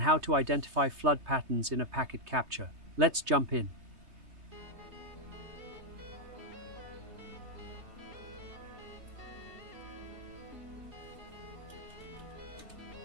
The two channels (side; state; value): left; late; 3.2 ms